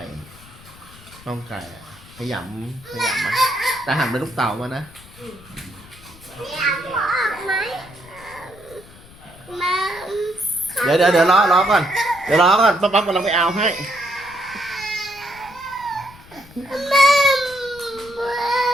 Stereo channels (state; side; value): noise; left; rumble, 22 dB below the sound